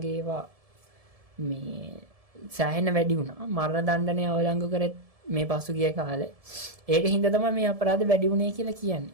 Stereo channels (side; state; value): left; late; 1.7 ms